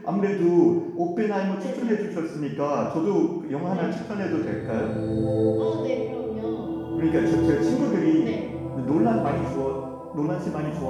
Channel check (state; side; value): identical; both; correlation 1.00